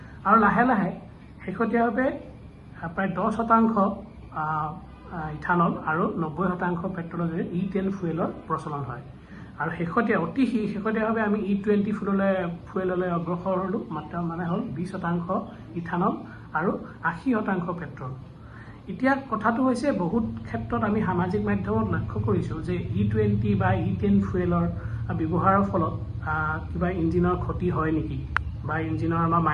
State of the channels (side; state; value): both; identical; correlation 1.00